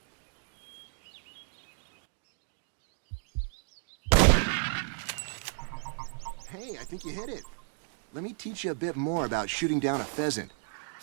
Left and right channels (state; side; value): silent; left; digital silence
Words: Hey, I think you hit it. Let me teach you a bit more about shooting down a pheasant.